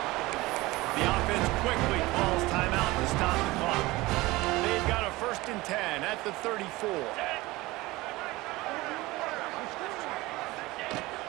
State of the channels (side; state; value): left; quieter; 20.3 dB